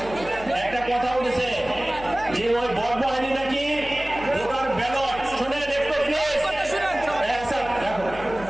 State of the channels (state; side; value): noise; left; hum, 15 dB below the sound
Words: একটা কথা উঠেছে যে ওই বড়